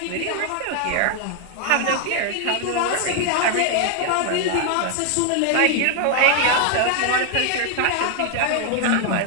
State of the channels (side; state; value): both; different; correlation 0.00